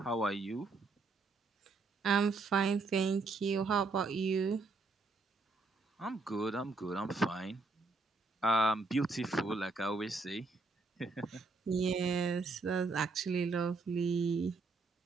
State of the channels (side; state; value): left; quieter; 3.8 dB